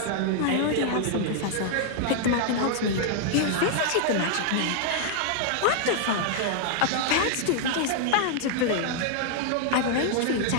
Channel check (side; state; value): both; different; correlation 0.00